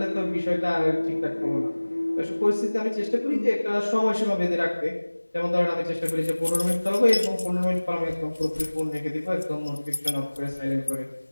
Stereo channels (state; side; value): inverted; both; correlation -1.00